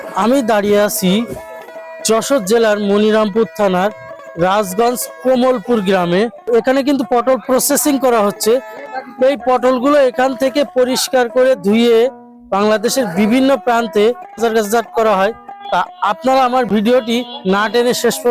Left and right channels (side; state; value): both; identical; correlation 1.00